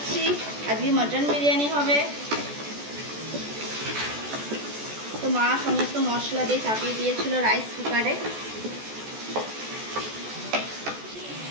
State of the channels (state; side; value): late; left; 14 ms